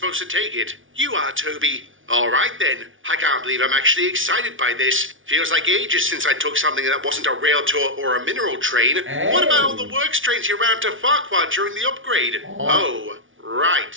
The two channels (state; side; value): late; left; 0.57 ms